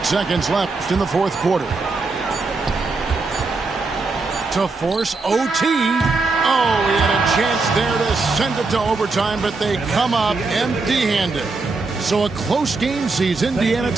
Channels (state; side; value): quieter; left; 3.8 dB